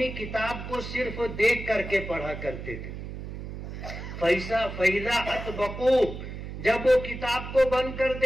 کتاب کو صرف دیکھ کر کے پڑھا کرتے تھے۔ فَإِذَا أَطْبَقُوا، جب وہ کتاب کو بند کر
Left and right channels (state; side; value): noise; right; hum, 9 dB below the sound